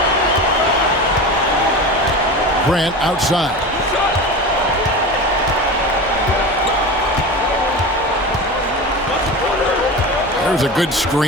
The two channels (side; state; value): both; normal; correlation 0.29